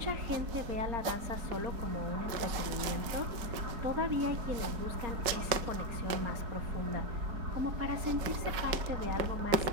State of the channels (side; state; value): left; late; 5.2 ms